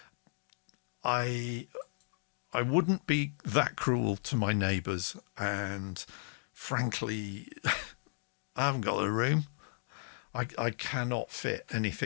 I wouldn't be that cruel to my neighbours, and frankly, I haven't got a room. I cannot fit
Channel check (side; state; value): right; silent; digital silence